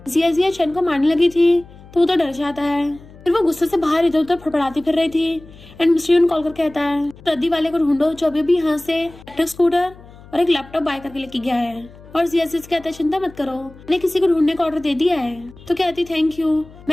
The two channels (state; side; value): noise; left; hum, 21 dB below the sound